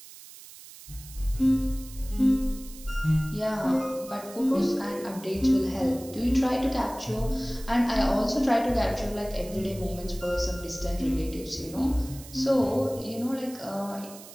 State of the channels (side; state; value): right; noise; hiss, 17 dB below the sound